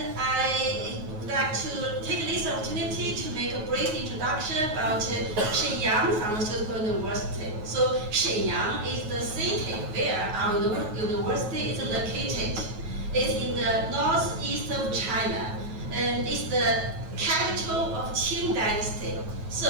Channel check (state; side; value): late; left; 9.5 ms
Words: I would like to take this opportunity to make a brief introduction about Shenyang Pharmaceutical University. So Shenyang is the city where our university is located. It's in the northeast of China, and it's the capital of Qing Dynasty.